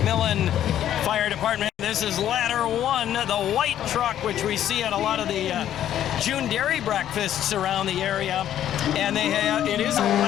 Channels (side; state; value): right; quieter; 11.1 dB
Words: Fire Department. This is Ladder 1, the white truck, which we see at a lot of the June dairy breakfasts around the area. And it is a